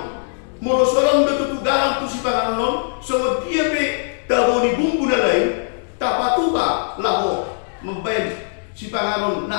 molo sorong betutu garam tu si panganon so dia pe daboni bumbu na lain tapatuka laho membayar si panganon na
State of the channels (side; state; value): right; silent; digital silence